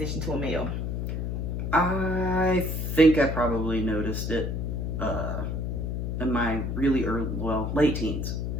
to a male? I think I probably noticed it in my really early, late teens.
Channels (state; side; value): noise; left; hum, 2 dB below the sound